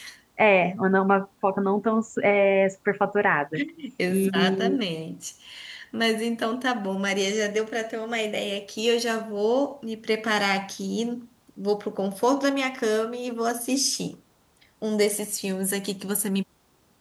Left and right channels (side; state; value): both; identical; correlation 1.00